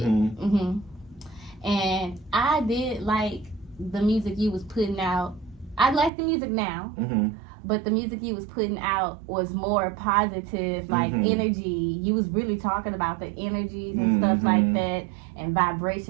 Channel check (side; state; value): left; drops out; at 6.1 s